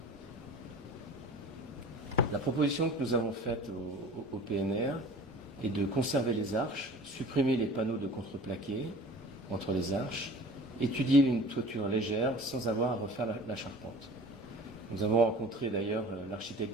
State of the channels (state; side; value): normal; both; correlation 0.42